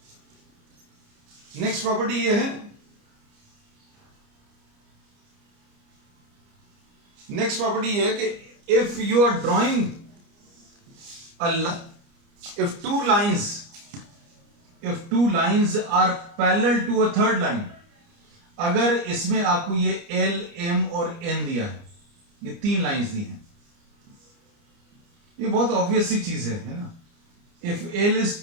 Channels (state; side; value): late; left; 29 ms